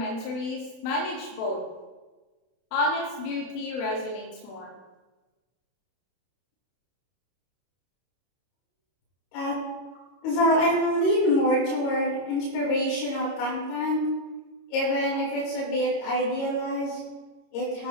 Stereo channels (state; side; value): late; right; 31 ms